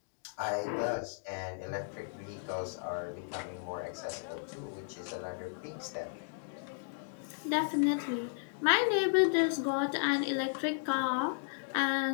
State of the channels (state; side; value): silent; right; digital silence